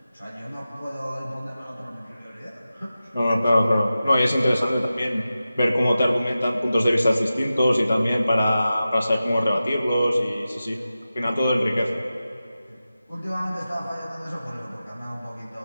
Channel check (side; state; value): both; inverted; correlation -0.94